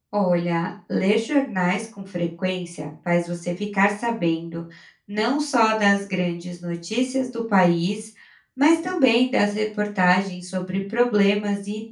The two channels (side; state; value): both; identical; correlation 1.00